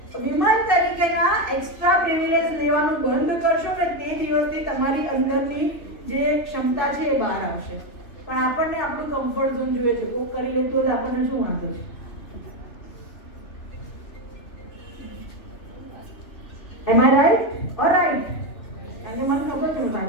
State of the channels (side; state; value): right; late; 3.0 ms